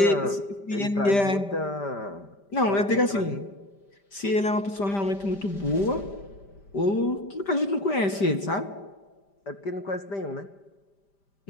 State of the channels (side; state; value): right; late; 5.1 ms